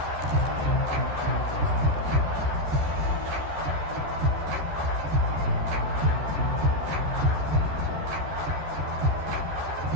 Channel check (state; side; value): late; left; 13 ms